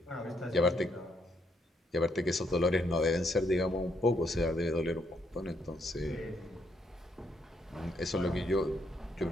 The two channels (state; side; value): normal; both; correlation 0.74